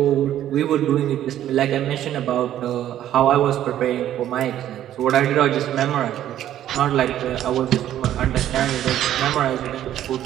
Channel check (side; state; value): left; quieter; 11.8 dB